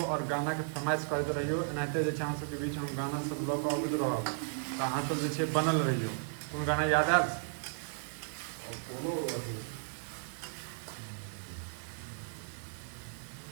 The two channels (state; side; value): silent; left; 55 dB below the other